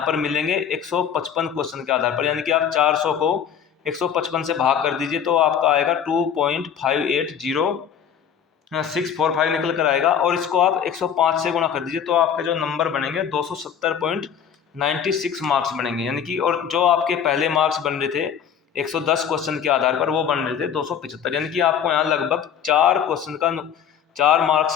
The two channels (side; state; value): right; quieter; 8.2 dB